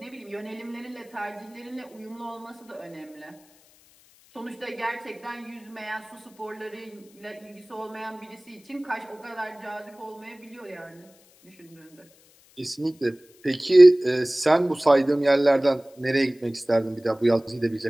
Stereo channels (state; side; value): noise; left; hiss, 29 dB below the sound